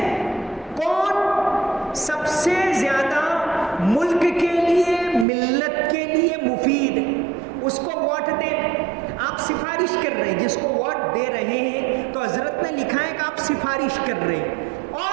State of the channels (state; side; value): drops out; left; at 5.2 s